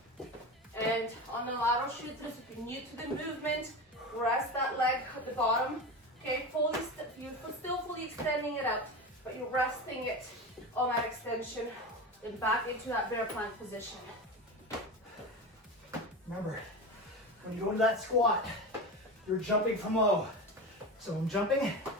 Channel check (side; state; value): both; normal; correlation 0.25